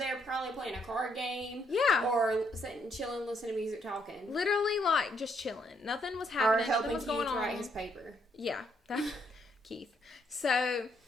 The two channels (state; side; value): normal; both; correlation 0.73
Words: were probably playing a card game. Yeah. Or sitting, chilling, listening to music, talking. Literally, like, just chilling. Nothing was happening. Or helping Nothing was Keith going on. write his paper. Yeah. Keith. So...